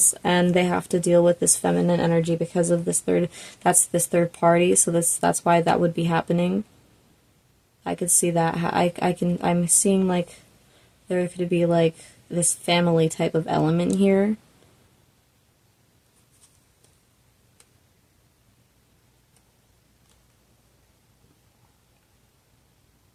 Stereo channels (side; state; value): both; identical; correlation 1.00